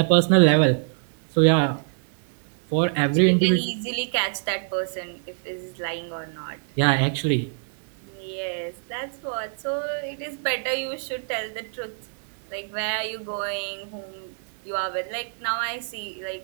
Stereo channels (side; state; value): left; silent; digital silence